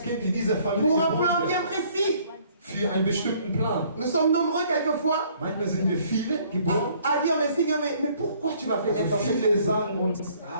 Kind in dieser Familie Pour un geboren plan wird. bien précis. Für einen bestimmten Plan. Nous sommes nombreux quelquefois Manchmal sind wir viele geboren. à dire, mais Seigneur, mais pourquoi tu m'as fait naître dans Also cette viele famille? sagen uns,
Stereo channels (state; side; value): inverted; both; correlation -0.61